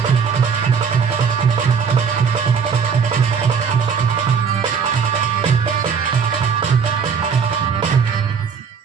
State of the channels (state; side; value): quieter; left; 6.3 dB